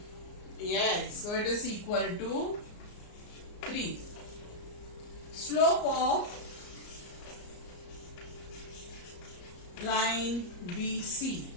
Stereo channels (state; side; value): late; right; 34 ms